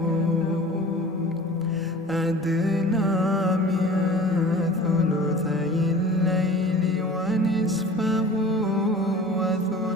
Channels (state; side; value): normal; both; correlation 0.42